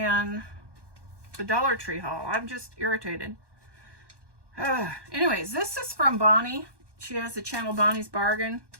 the Dollar Tree haul. I'm just irritated. Anyways, this is from Bonnie. She has the channel Bonnie's Bargain.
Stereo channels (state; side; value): late; left; 1.2 ms